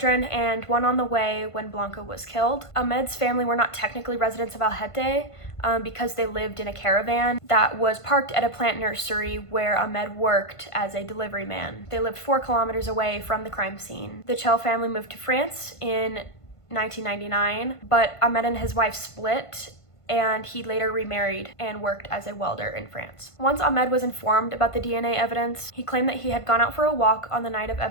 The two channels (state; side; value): late; right; 1.5 ms